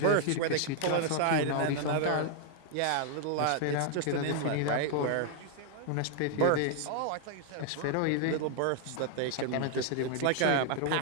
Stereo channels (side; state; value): both; different; correlation 0.00